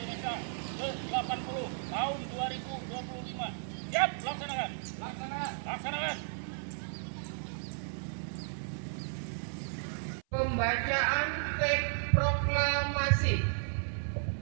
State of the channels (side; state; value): left; silent; 55 dB below the other